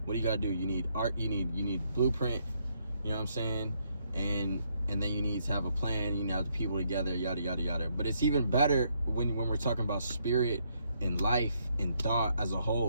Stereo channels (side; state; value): both; inverted; correlation -0.74